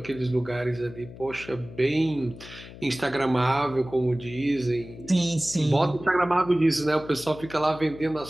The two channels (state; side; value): noise; left; hum, 16 dB below the sound